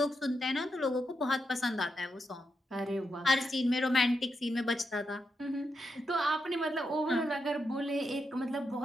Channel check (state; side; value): normal; both; correlation 0.84